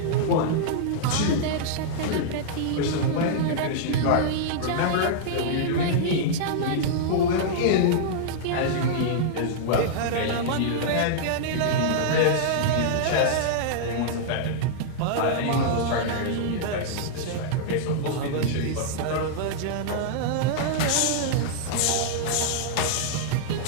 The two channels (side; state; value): both; different; correlation -0.02